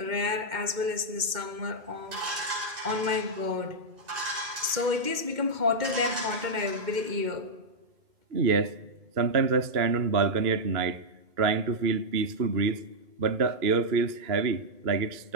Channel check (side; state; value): left; late; 2.1 ms